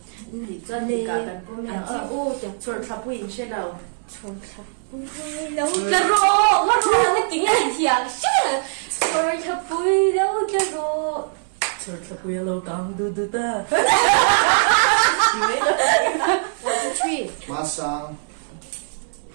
Đi doan đi cả kan ko mi ang Ô, chẳng sor trapui in shi lâu. trông thật. Lâu cái rô, nó tiếng là thiang. Rồi thật bùi lâu cái rô. Sor trapui lâu gang du du ta. 3. Masang.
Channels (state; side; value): silent; left; 64 dB below the other